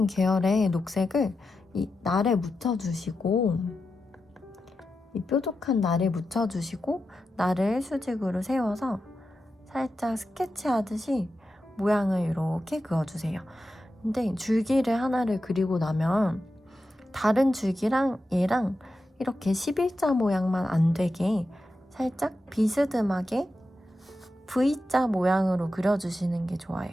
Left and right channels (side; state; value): both; normal; correlation 0.90